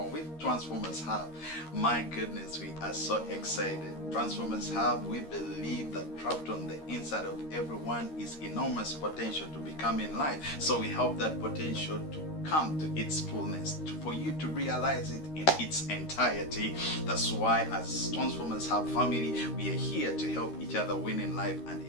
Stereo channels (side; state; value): right; late; 13 ms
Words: with Transformers Hub. My goodness, we are so excited. Transformers Hub, we believe that trapped on the inside of everyone is enormous potential to become in life. So we help that potential to come to its fullness, for you to realize it in its entirety. That's why as Transformers Hub family, we are here to help each other win in life and